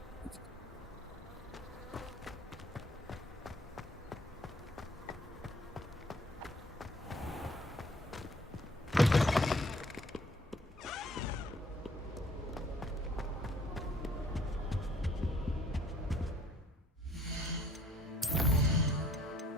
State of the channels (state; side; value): normal; both; correlation 0.59